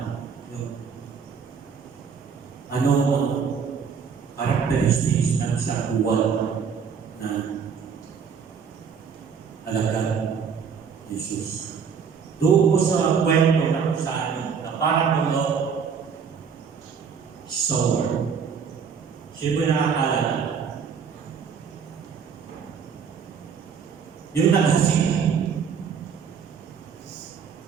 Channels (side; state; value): left; quieter; 6.6 dB